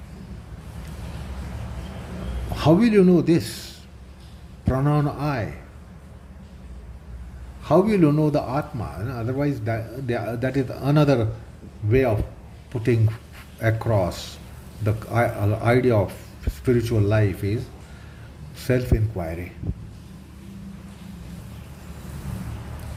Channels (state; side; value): identical; both; correlation 1.00